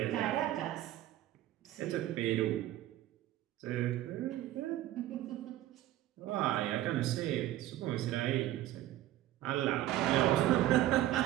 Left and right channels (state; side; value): quieter; left; 14.2 dB